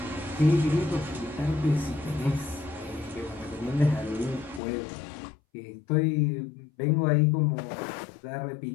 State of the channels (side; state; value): right; drops out; at 4.6 s